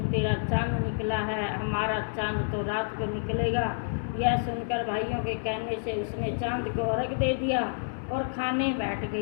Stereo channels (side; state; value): right; silent; digital silence